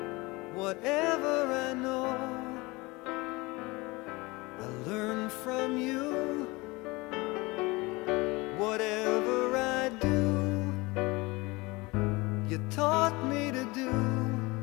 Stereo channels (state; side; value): quieter; right; 23.7 dB